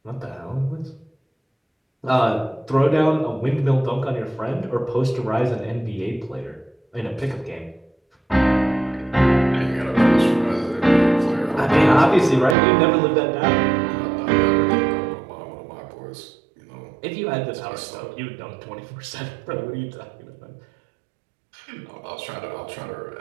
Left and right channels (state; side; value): drops out; left; at 12.6 s